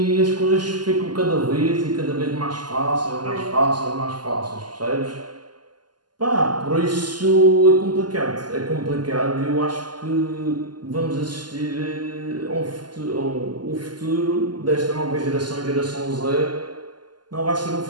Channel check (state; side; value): late; left; 0.71 ms